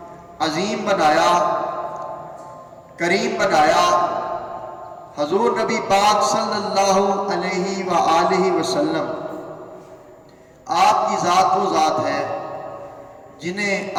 عظیم بنایا، کریم بنایا۔ حضور نبی پاک صلی اللہ علیہ وآلہ وسلم آپ کی ذات وہ ذات ہے جنہیں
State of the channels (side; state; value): both; identical; correlation 1.00